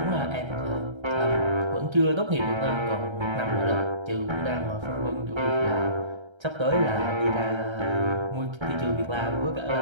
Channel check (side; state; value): left; late; 1.3 ms